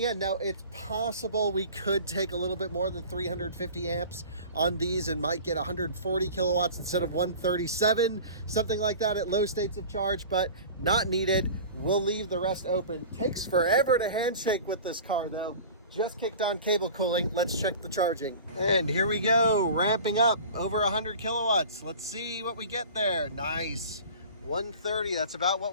end. Now, it's possible we could take a little bit more than 350 amps on these and might get 140 kilowatts instead of 137, something like that at low states of charge, but not needed. We'll leave the rest open. Takes forever to handshake with this car, though. Just kicked on cable cooling. Let's check the charging. And here we go, ramping up over 100 kilowatts. Let's see what we get there. Nice. 130, that's about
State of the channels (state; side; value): inverted; both; correlation -0.39